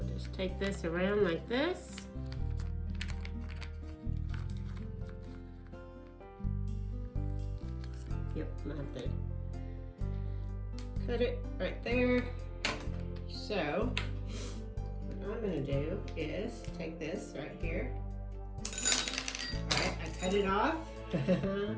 just take this around like this. Yep, I'm going to have to cut it right there. So what I'm going to do is take this right here. Alright, I cut it off.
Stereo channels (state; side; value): identical; both; correlation 1.00